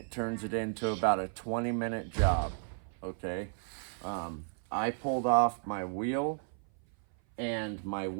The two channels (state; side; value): silent; left; 55 dB below the other